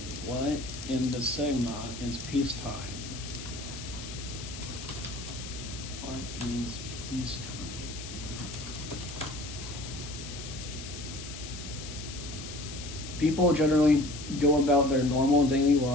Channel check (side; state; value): left; noise; hiss, 11 dB below the sound